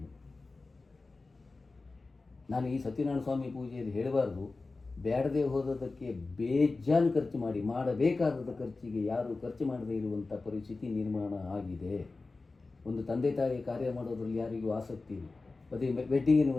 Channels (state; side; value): quieter; right; 3.7 dB